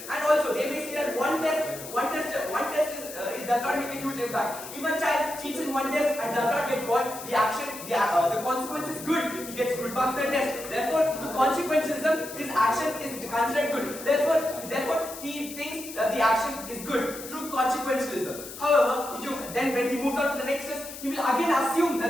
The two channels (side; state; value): left; noise; hiss, 12 dB below the sound